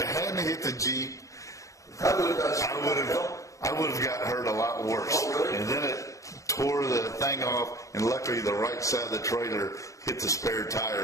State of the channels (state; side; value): late; right; 0.16 ms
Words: hadn't hit the Jeep, I would have got hurt a lot worse. Oh, really? And then it tore the thing off, and luckily the right side of the trailer hit the spare